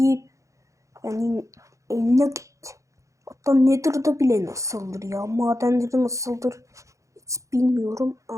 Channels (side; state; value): left; late; 0.15 ms